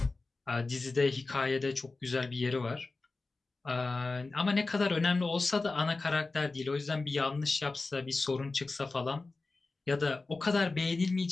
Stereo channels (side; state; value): right; quieter; 3.6 dB